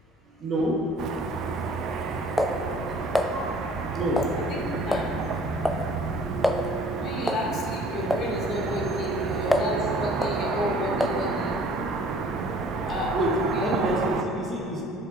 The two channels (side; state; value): both; normal; correlation 0.54